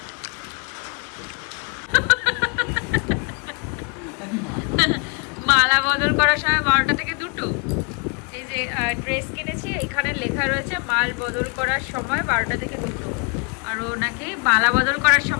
মালা বদল করার সময় 12টা থেকে 2টো। এই যে ড্রেস কিনেছি, এখানে লেখা রয়েছে মাল বদল করার সময় 12টা থেকে 2টো, আর ও নাকি মালা বদল করার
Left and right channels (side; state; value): right; quieter; 33.4 dB